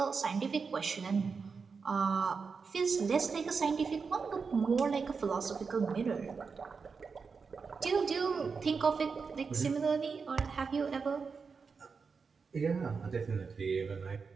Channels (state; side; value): quieter; left; 5.2 dB